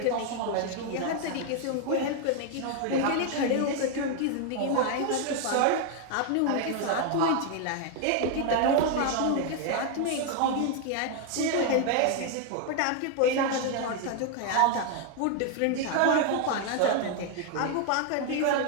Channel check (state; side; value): different; both; correlation 0.00